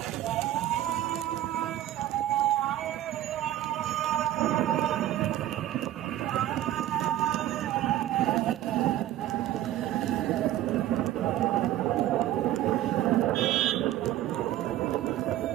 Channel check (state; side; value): quieter; left; 13.3 dB